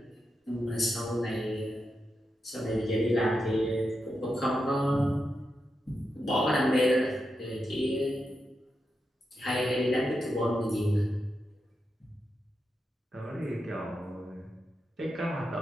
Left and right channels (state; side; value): normal; both; correlation 0.87